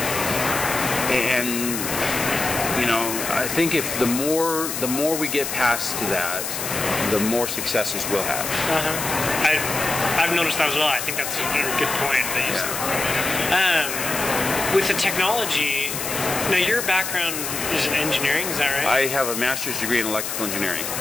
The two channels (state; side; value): noise; left; hiss, 4 dB below the sound